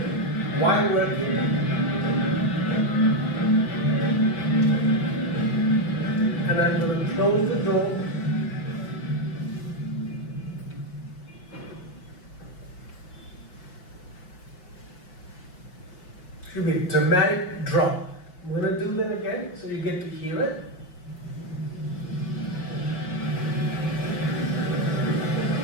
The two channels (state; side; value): late; right; 5.8 ms